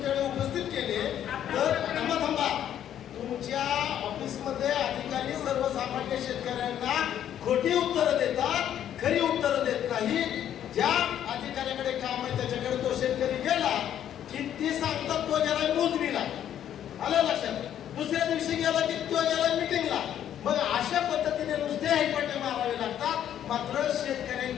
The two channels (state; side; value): quieter; right; 10.4 dB